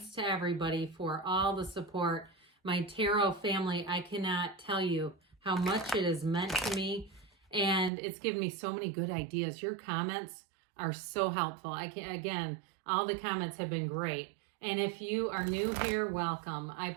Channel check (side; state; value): left; drops out; at 7.9 s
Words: to everybody for all the support. My tarot family, I cannot tell you how much it has meant to me, and it's given me so many good ideas. Your comments are so helpful. Again, all the comments have been great. And if you are new here, welcome. I